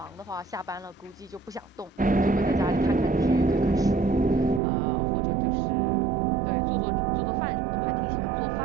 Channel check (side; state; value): left; drops out; at 4.6 s